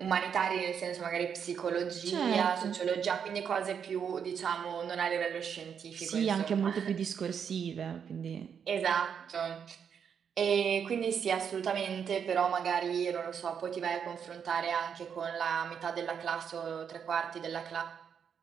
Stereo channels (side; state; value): left; quieter; 7.4 dB